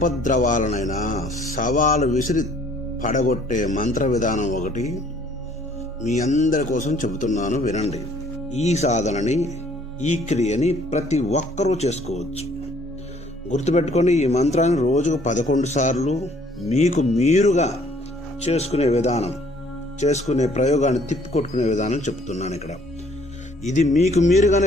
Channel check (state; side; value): normal; both; correlation 0.60